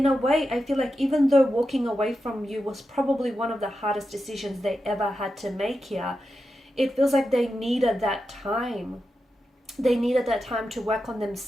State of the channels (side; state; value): both; normal; correlation 0.89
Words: a way, I feel like even though walking away from you was probably one of the hardest decisions they ever had to make here, it feels like they needed that time. They needed that time to work on